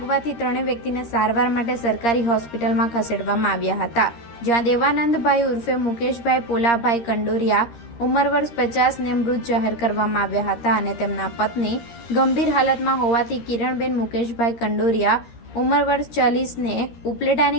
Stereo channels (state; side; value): late; right; 13 ms